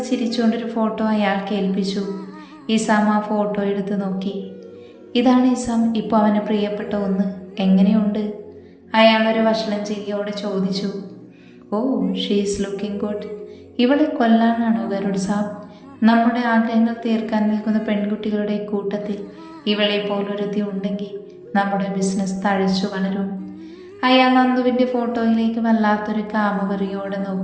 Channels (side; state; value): both; identical; correlation 1.00